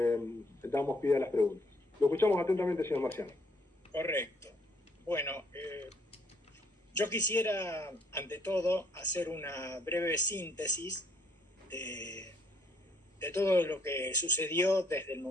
damos pie a las preguntas. Lo escuchamos atentamente, señor Marciano. Correcto. Bueno, yo quisiera, ante todo, hacer una breve síntesis de todo lo que sucedió desde el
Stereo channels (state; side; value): normal; both; correlation 0.67